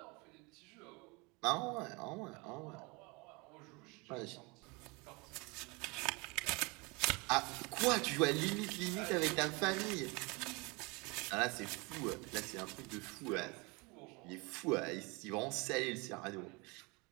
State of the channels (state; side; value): quieter; left; 27.6 dB